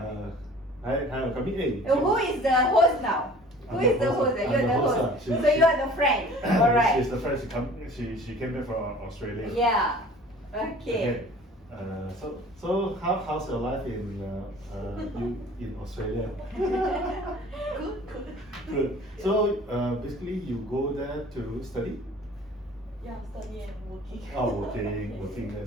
Hi, come in. Who is the host now? Who is the host? You're the host. So you are the friend. Alright. She's the friend. She came back from Australia. Yeah. Okay. So how's your life in Australia? Good. Good. So basically, you go there to study. Yeah, study and working. Oh, working there.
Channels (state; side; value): normal; both; correlation 0.48